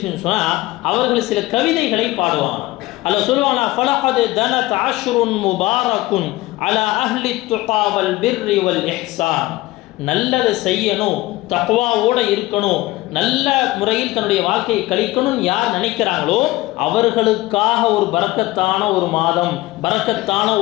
சொன்னால் அவர்கள் சில கவிதைகளை பாடுவாங்க. அல்ல சொல்லுவாங்களா, ஃபலகத் தனத் அஷ்ருன் முபாரக்குன் அலா அஹ்லி துகா வல் பிர்ரி வல் இஹ்சான். நல்லதை செய்யணும், தக்வாவோட இருக்கணும், நல்ல முறையில் தன்னுடைய வாழ்க்கையை கழிக்கணும் யார் நினைக்கிறாங்களோ அவர்களுக்காக ஒரு பரக்கத்தான ஒரு மாதம், பரக்கத்தான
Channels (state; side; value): quieter; right; 18.6 dB